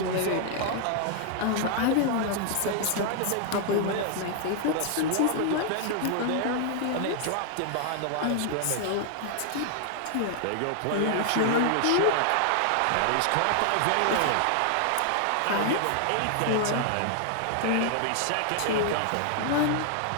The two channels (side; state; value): both; different; correlation 0.00